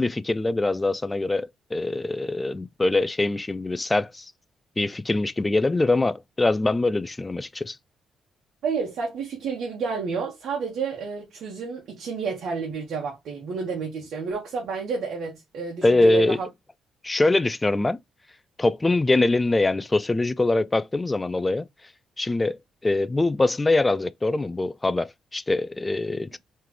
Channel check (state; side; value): normal; both; correlation 0.93